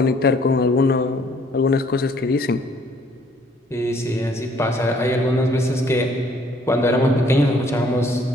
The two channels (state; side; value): normal; both; correlation 0.61